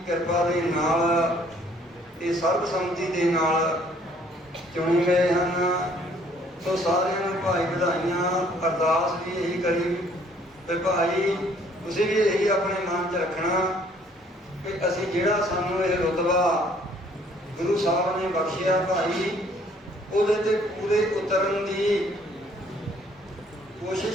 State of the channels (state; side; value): normal; both; correlation 0.61